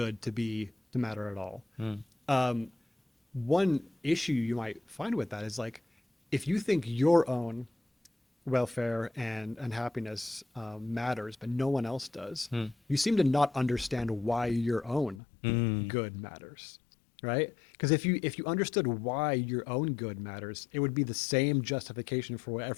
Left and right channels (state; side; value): drops out; right; at 15.2 s